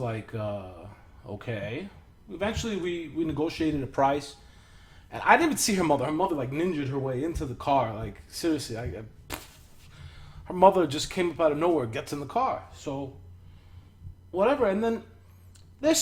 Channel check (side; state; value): both; identical; correlation 1.00